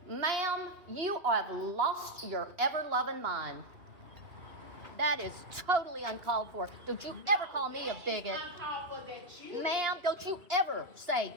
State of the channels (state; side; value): late; left; 2.9 ms